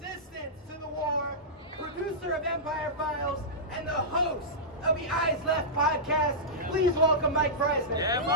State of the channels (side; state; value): both; normal; correlation -0.14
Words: to the war, producer of Empire Files, and the host of the Eyes Left podcast. Please welcome Mike Prysner. Yeah,